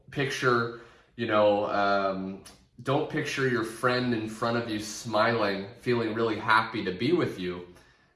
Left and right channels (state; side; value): identical; both; correlation 1.00